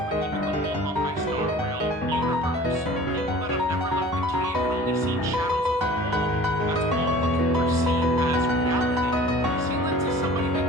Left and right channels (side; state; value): both; normal; correlation 0.45